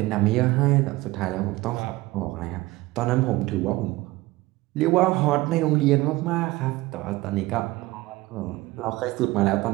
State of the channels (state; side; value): quieter; left; 19.5 dB